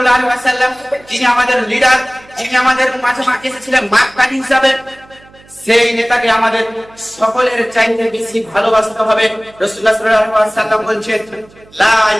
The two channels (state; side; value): noise; right; hum, 26 dB below the sound